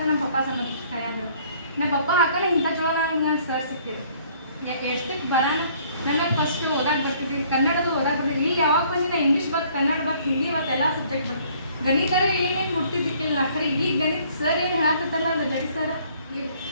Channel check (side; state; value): both; inverted; correlation -0.59